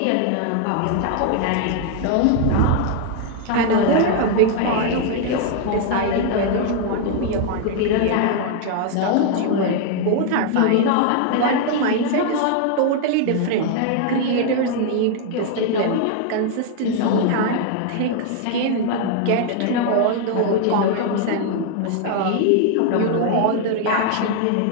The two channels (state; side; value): different; both; correlation 0.00